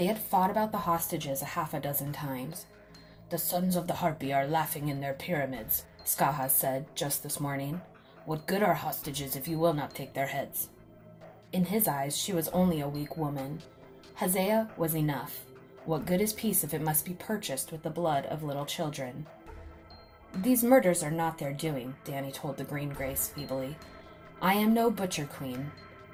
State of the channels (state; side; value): identical; both; correlation 1.00